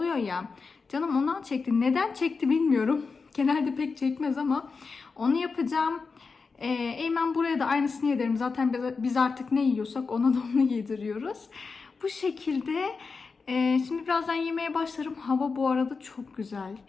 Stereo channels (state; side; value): quieter; right; 4.7 dB